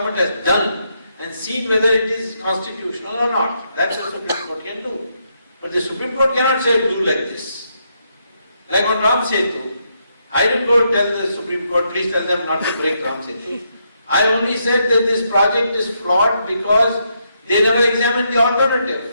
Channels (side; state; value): both; inverted; correlation -0.78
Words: has done and see whether it is constitutional or not. That's what the Supreme Court can do. But the Supreme Court cannot say do like this. Like on Ram Setu, I didn't go tell the Supreme Court, please tell them not to break Ram Setu. I only said that this project is flawed because they never examined the alternative.